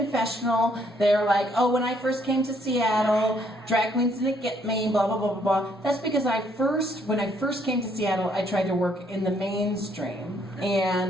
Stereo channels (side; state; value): both; normal; correlation 0.68